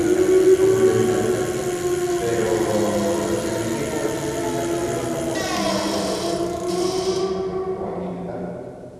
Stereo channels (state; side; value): identical; both; correlation 1.00